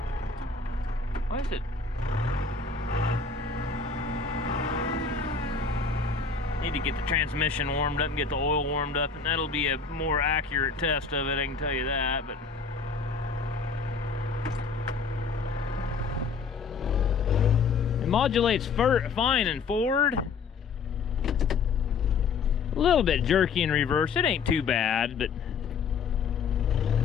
what is it? Need to get the transmission warmed up and get the oil warmed up, and that'll be a more accurate test of it, I can tell you that. But it modulates fine in forward, a little bit jerky in reverse. It ain't too bad, but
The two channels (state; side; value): quieter; right; 5.2 dB